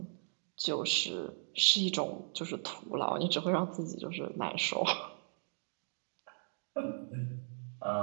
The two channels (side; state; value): left; silent; 53 dB below the other